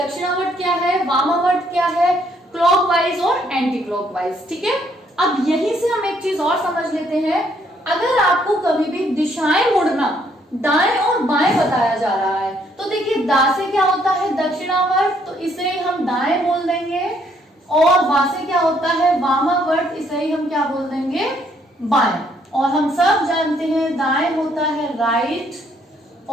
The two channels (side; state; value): both; normal; correlation 0.68